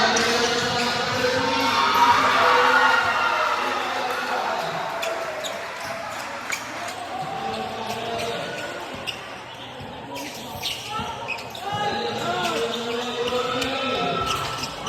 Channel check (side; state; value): both; identical; correlation 1.00